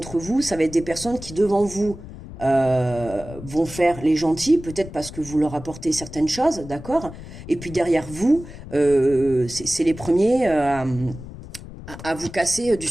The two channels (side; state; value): left; noise; rumble, 14 dB below the sound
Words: vous, ça va être des personnes qui devant vous vont faire les gentils, peut-être parce que vous leur apportez certaines choses, d'accord? Et puis derrière vous, c'est les premiers à vous casser du